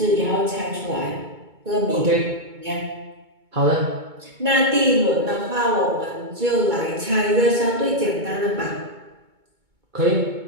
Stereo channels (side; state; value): left; late; 2.2 ms